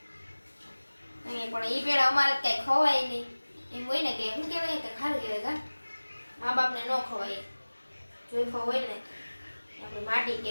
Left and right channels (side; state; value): both; inverted; correlation -1.00